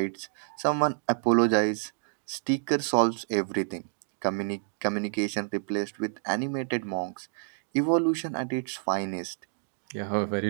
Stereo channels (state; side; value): silent; left; digital silence